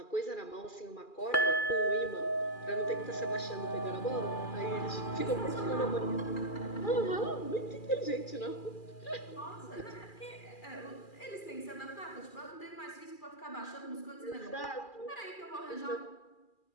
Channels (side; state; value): right; late; 2.4 ms